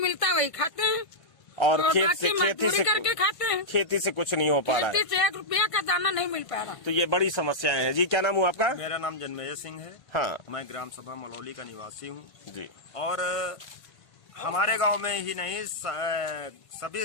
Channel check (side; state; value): right; late; 1.5 ms